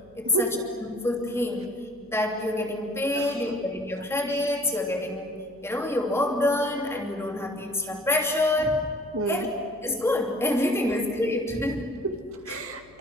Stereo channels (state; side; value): noise; left; hum, 28 dB below the sound